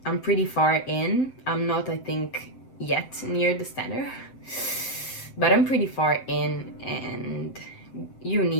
pretty far in. I'm not, I think, yet near the standard, but I'm pretty far in, and you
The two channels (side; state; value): right; late; 7.7 ms